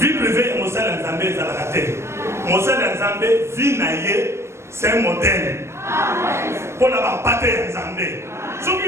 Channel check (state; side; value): late; left; 0.13 ms